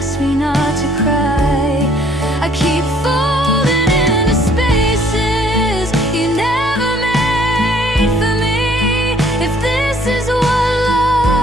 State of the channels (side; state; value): both; normal; correlation 0.60